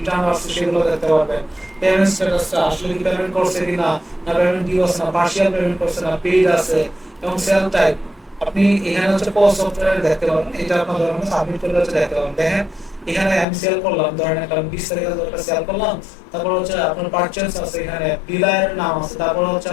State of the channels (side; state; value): right; drops out; at 13.5 s